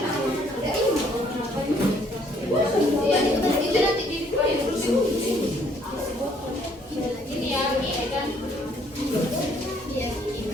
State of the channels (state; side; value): normal; both; correlation 0.64